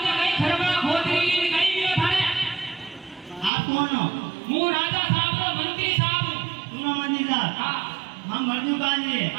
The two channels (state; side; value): drops out; left; at 3.5 s